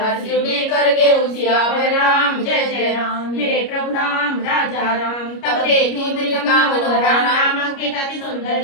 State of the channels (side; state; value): right; late; 29 ms